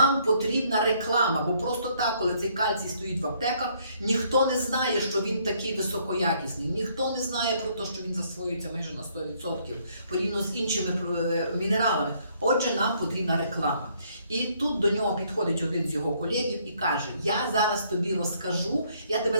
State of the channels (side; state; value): both; inverted; correlation -0.67